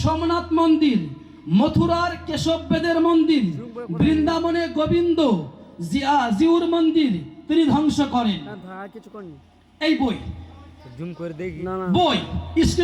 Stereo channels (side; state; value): both; identical; correlation 1.00